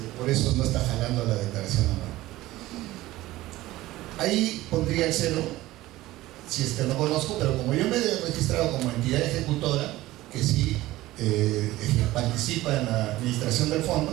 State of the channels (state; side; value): quieter; left; 17.1 dB